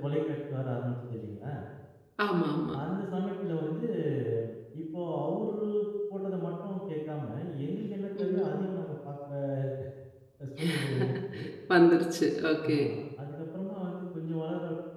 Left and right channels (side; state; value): both; identical; correlation 1.00